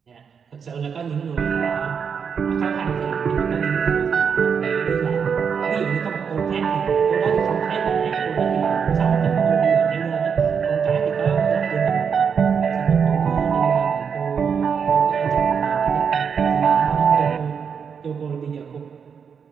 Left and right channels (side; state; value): left; quieter; 6.6 dB